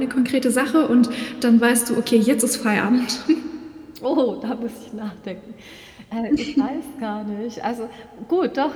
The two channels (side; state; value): both; identical; correlation 1.00